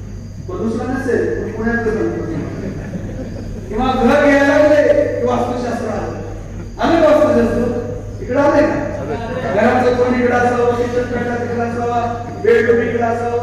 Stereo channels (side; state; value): both; identical; correlation 1.00